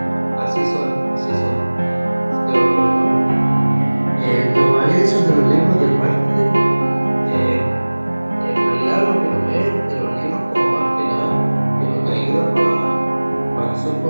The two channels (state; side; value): inverted; both; correlation -1.00